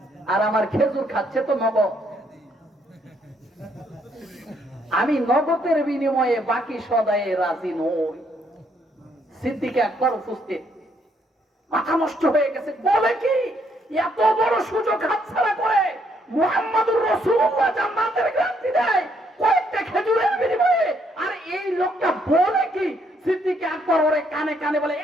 আর আমার খেজুর খাচ্ছে তো নগদ। আমি নগদের বিনিময়ে বাকি সদায়ে রাজি নই। সিদ্দিক আকবর উপস্থিত, মাথা নষ্ট হয়ে গেছে। বলে কি, এত বড় সুযোগ হাতছাড়া করে মুহাম্মদুর রাসূলুল্লাহ জান্নাতের গ্যারান্টি দেয় কয়েকটা খেজুরের বিনিময়ে, আর এই লোকটা বলে কি? সিদ্দিক আকবর ওরে কানে কানে বলে,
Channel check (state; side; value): normal; both; correlation 0.71